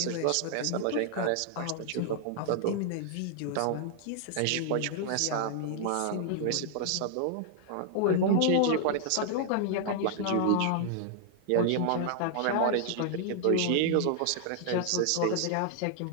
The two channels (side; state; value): both; different; correlation -0.01